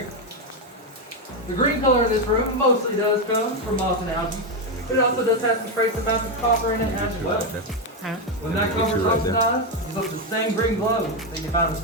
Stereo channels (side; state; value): both; normal; correlation 0.07